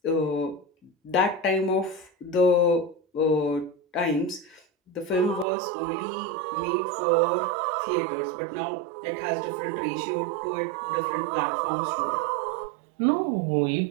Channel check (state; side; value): drops out; left; at 5.5 s